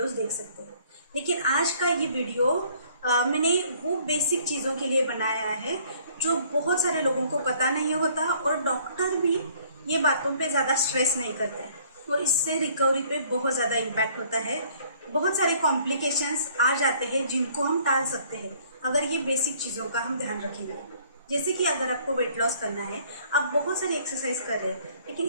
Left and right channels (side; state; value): both; inverted; correlation -0.59